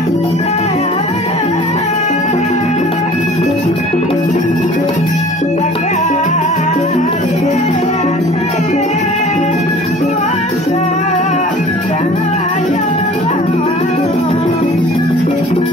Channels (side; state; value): both; normal; correlation 0.47